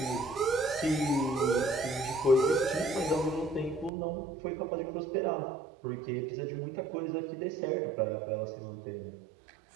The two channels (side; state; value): left; drops out; at 3.9 s